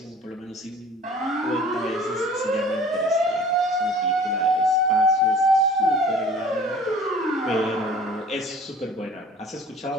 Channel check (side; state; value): both; normal; correlation 0.47